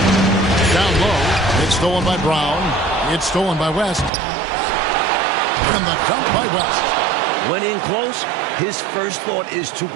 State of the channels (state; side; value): drops out; left; at 4.1 s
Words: Down low. It's stolen by Brown. It's stolen by West. And the dunk by West. When in close, his first thought is to